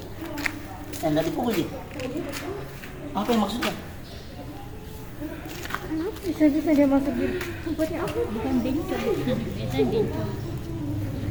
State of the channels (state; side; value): identical; both; correlation 1.00